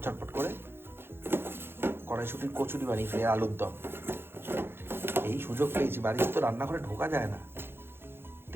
ঝটপট করে কড়াইশুটির কচুরি বানিয়েছি, আলুর দম। এই সুযোগ পেয়েছি, বাড়িতে তো রান্নাঘরে ঢোকা যায় না,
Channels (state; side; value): late; left; 0.11 ms